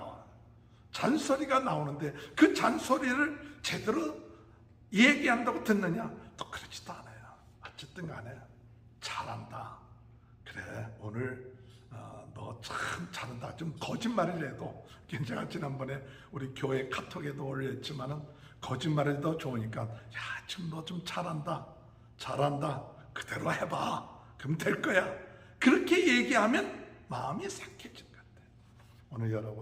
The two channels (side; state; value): both; identical; correlation 1.00